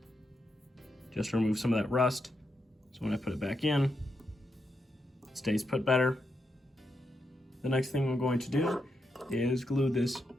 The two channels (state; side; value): normal; both; correlation 0.84